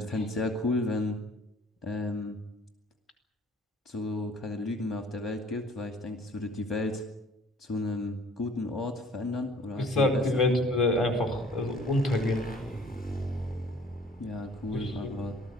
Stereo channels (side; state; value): both; normal; correlation 0.53